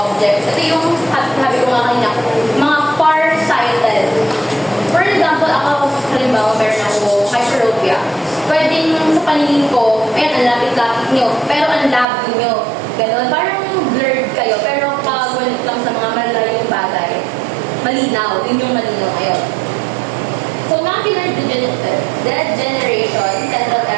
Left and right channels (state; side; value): drops out; left; at 12.1 s